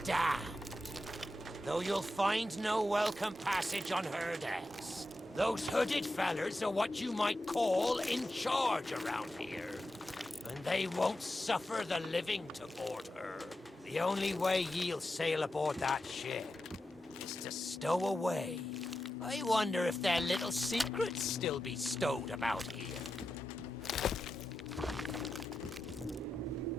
Though you'll find no welcome passage on her decks. Those hooded fellers are what you might call in charge around here. And they won't suffer the living to board her. The only way ye'll sail aboard that ship is to stow away. I wonder if their little secrets still be stowed about here.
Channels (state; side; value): normal; both; correlation 0.90